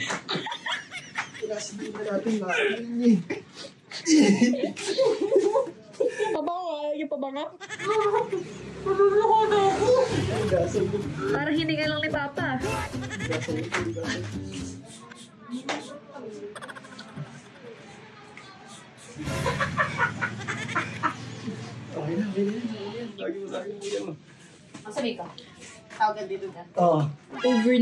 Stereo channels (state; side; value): identical; both; correlation 1.00